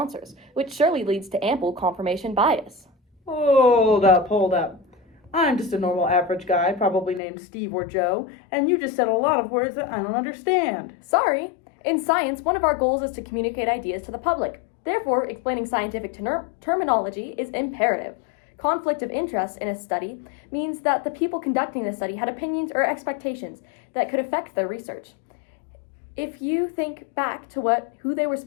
which surely leads to ample confirmation bias. Hold up. I'm just a normal average guy, probably named Steve or Joe, and you just said a lot of words that I don't understand. Sorry. In science, one of our goals is to communicate ideas to the public. Therefore, explaining scientific terminology is imperative. Conflict of interest in a study means that the people conducting the study had opinions or expectations that could affect their research. If you think back to who they were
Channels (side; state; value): right; drops out; at 7.2 s